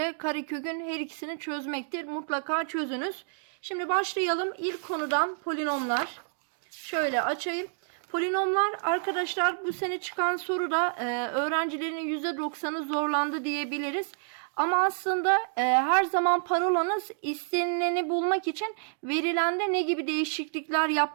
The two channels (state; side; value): silent; left; digital silence